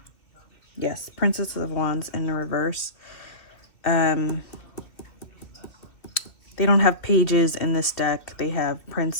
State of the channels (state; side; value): late; right; 2.7 ms